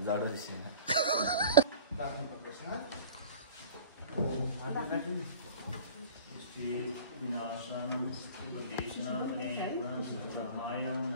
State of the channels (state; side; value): inverted; both; correlation -0.42